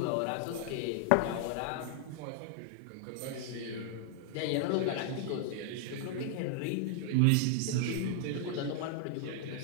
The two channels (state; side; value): different; both; correlation 0.00